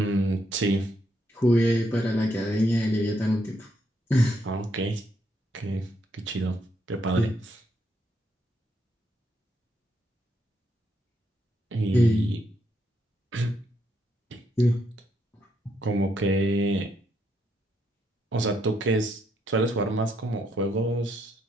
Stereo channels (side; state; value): both; normal; correlation 0.76